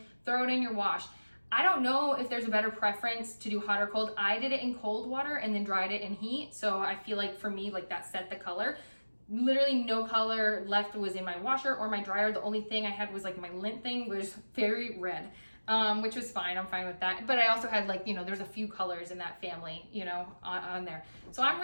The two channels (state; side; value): inverted; both; correlation -1.00